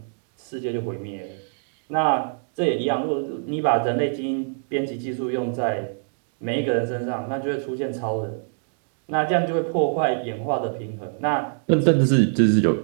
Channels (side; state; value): left; silent; digital silence